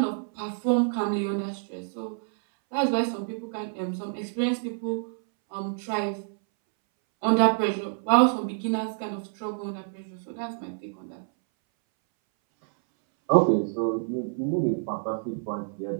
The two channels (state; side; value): silent; left; 60 dB below the other